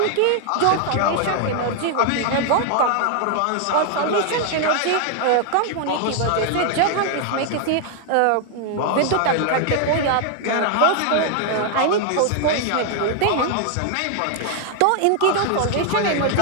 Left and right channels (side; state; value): both; different; correlation 0.00